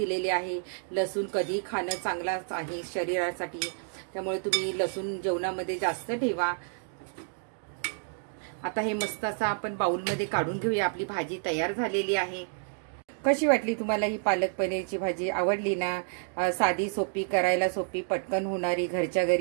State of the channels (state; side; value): silent; left; digital silence